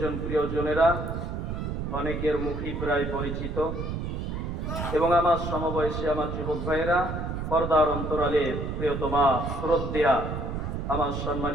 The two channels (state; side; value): noise; right; rumble, 4 dB below the sound